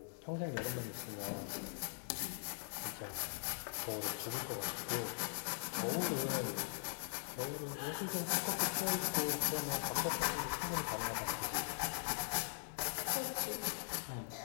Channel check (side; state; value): right; silent; digital silence